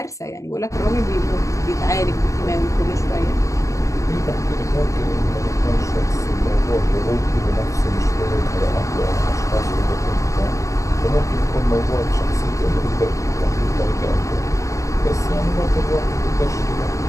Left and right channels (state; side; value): late; right; 0.15 ms